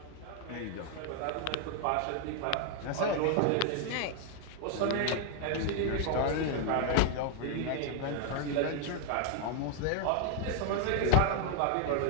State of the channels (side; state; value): both; different; correlation 0.00